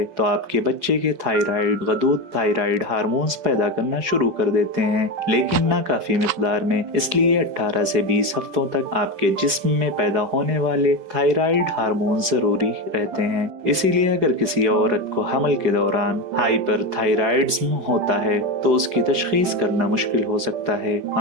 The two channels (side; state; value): left; late; 5.2 ms